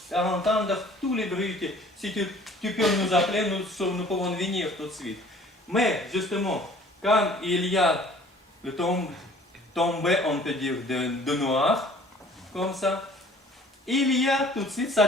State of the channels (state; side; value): normal; both; correlation 0.52